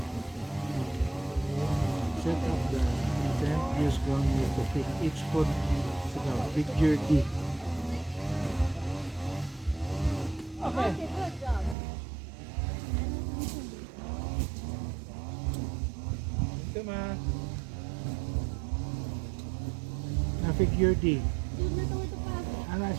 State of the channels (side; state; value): left; drops out; at 11.8 s